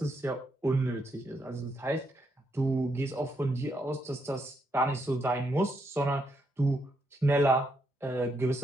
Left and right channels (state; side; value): normal; both; correlation 0.78